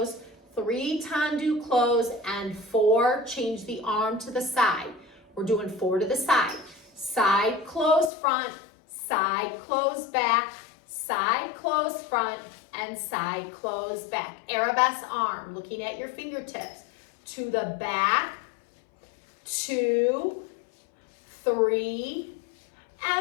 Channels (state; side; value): drops out; right; at 8.1 s